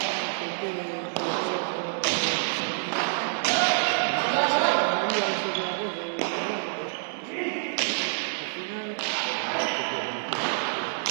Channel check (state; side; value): silent; left; digital silence